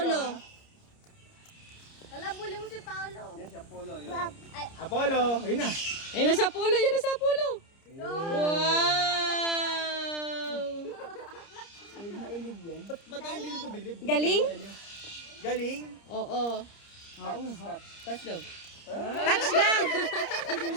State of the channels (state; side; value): late; right; 30 ms